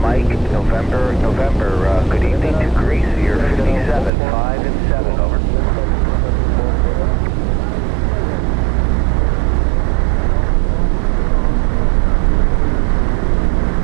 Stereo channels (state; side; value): drops out; left; at 4.1 s